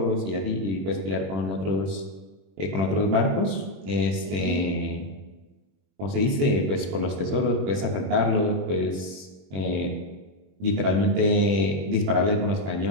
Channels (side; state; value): left; late; 21 ms